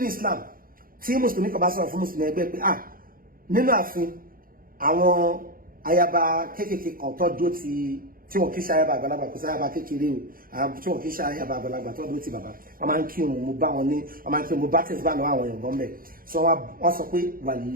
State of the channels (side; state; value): left; late; 0.42 ms